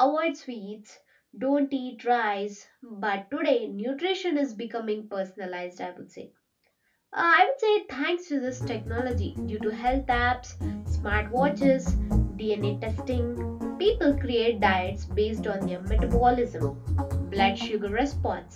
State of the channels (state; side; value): identical; both; correlation 1.00